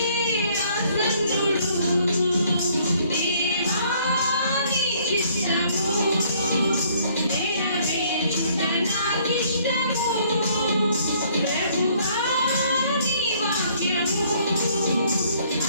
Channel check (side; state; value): both; inverted; correlation -0.62